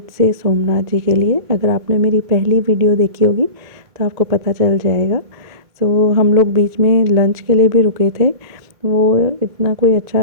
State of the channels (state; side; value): late; left; 2.2 ms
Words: से सोमनाथ जी के लिए। अगर आपने मेरी पहली वीडियो देखी होगी तो आपको पता चल जाएगा। हम लोग बीच में लंच के लिए भी रुके थे। वो इतना कोई